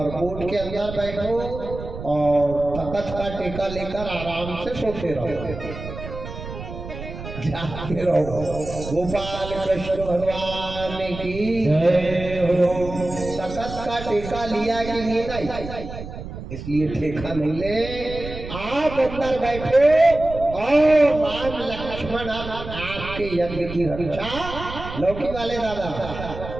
के अंदर बैठो और तख्त का टेका लेकर आराम से सोते रहो, जाते रहो। गोपाल कृष्ण भगवान की जय हो। तख्त का टेका लिया कि नहीं? इसलिए ठेका नहीं ले, आप अंदर बैठे और राम लक्ष्मण आपके यज्ञ की रक्षा लौकी वाले दादा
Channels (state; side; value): noise; right; rumble, 10 dB below the sound